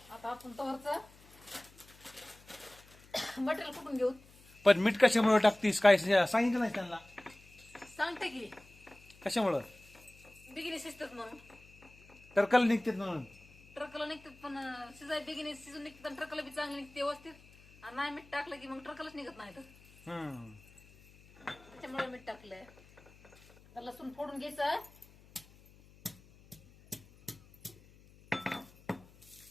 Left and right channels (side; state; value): left; noise; hum, 24 dB below the sound